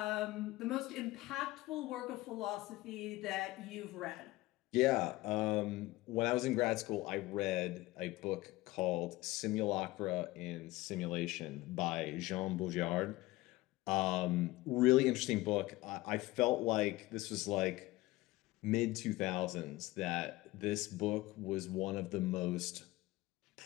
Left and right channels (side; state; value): right; quieter; 19.2 dB